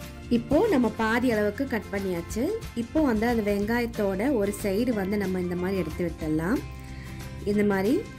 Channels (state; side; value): identical; both; correlation 1.00